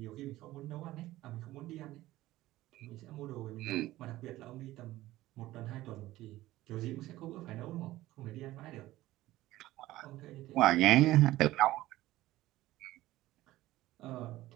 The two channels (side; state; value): left; quieter; 16.4 dB